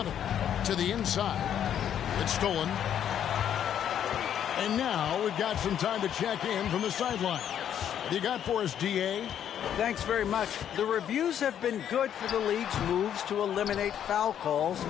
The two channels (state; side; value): quieter; right; 9.7 dB